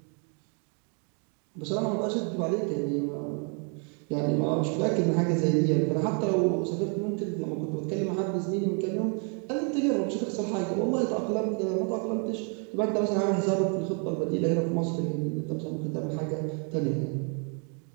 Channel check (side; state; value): left; quieter; 39.1 dB